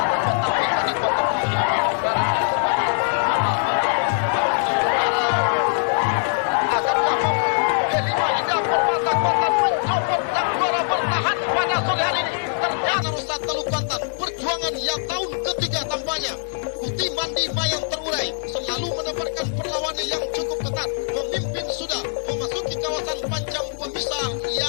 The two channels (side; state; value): right; silent; 64 dB below the other